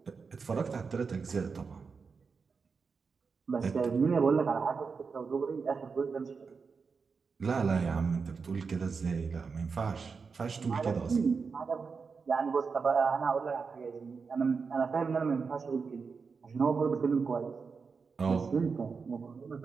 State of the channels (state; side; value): quieter; left; 5.2 dB